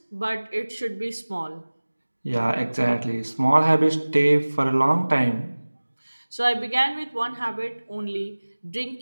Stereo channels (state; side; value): inverted; both; correlation -1.00